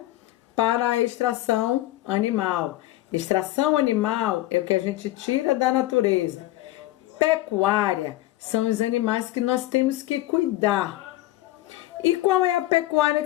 para a extração animal. Extração animal é o que a gente tira da natureza. Pecuária são os animais que nós temos que cuidar. E qual é a pecuária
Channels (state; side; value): quieter; right; 16.3 dB